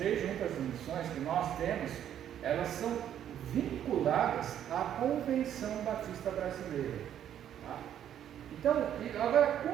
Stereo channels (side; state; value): left; quieter; 10.2 dB